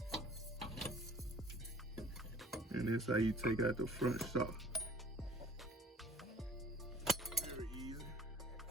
And that's how you take out the front shock. Very easy.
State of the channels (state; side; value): normal; both; correlation 0.50